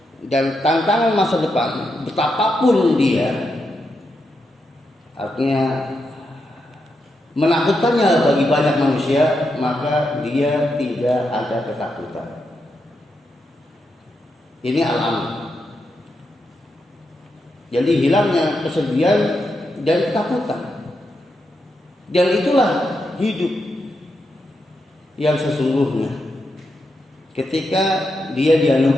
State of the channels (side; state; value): both; normal; correlation 0.84